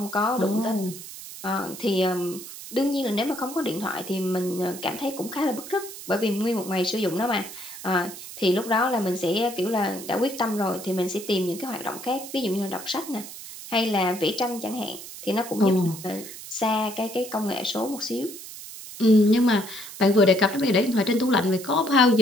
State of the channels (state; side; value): noise; right; hiss, 13 dB below the sound